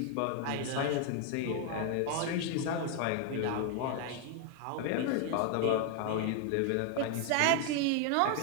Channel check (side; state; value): both; different; correlation 0.00